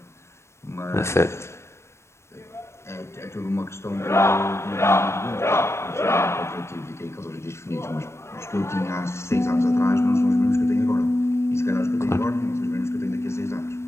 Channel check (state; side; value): late; right; 0.13 ms